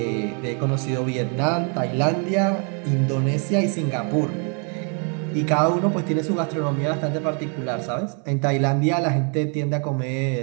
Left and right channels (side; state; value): left; quieter; 39.0 dB